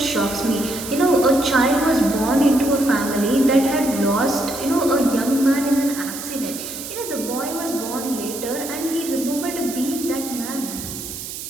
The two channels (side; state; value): right; noise; hiss, 9 dB below the sound